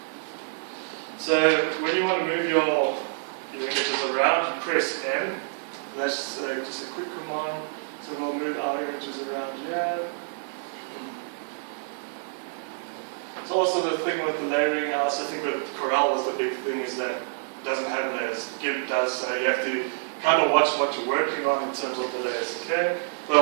So when you want to move your images around, you press M. That's just a quick command. So we'll move our images around here. So also the thing with the layering, I also think with Corel was the big thing, is that it doesn't have layers. GIMP does, so you have to kind of watch what you're working on in terms of the layers, okay?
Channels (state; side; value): silent; left; digital silence